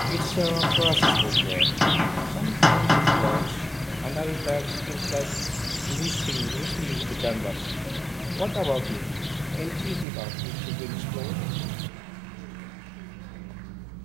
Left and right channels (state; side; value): drops out; left; at 10.1 s